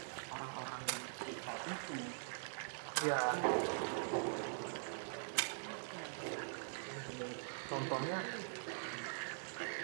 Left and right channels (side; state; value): left; silent; digital silence